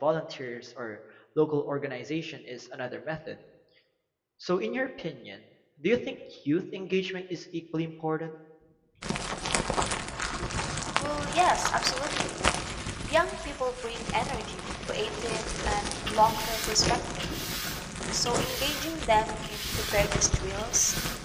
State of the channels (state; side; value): identical; both; correlation 1.00